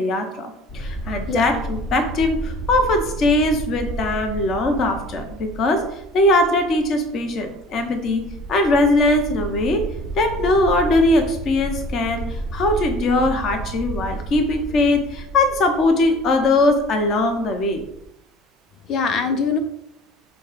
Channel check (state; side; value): normal; both; correlation 0.48